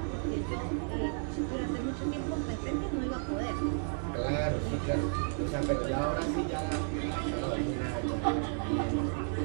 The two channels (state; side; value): silent; left; 56 dB below the other